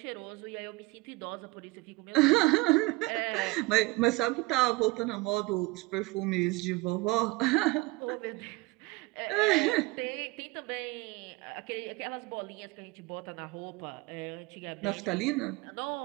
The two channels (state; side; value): quieter; left; 23.2 dB